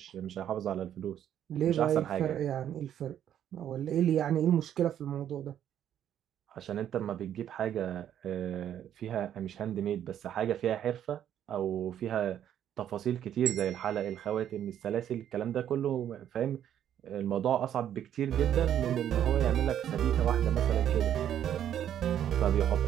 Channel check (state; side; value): quieter; left; 10.3 dB